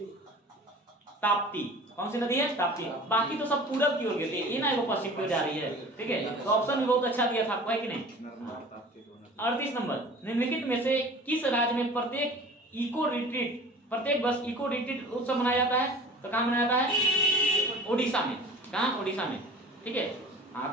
ताप्ती। कौन सी नदी है? ताप्ती। बाकी तो सब पूरब की ओर गिरती है, ये ना वो पश्चिम की ओर जा रही है। ठीक है, तो ऑप्शन भी बहुत अच्छा दिया था आपको, है कि नहीं? 38 नंबर, निम्नलिखित में से किस राज्य में प्रत्येक वर्ष इको रिट्रीट उत्सव मनाया जाता है? तो कहाँ मनाया जाता है? ओडिशा में। कहाँ? ओडिशा में। ठीक है, हाँ,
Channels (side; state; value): both; normal; correlation 0.42